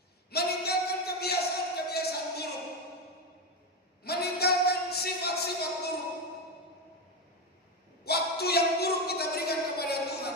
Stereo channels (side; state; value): both; normal; correlation 0.12